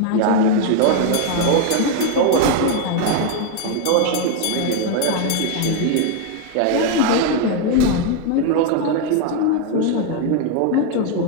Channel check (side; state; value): both; different; correlation 0.01